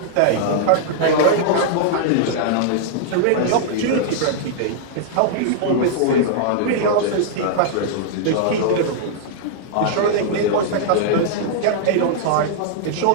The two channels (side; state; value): both; different; correlation -0.01